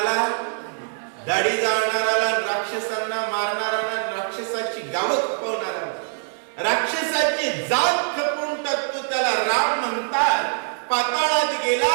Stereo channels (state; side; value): silent; left; 63 dB below the other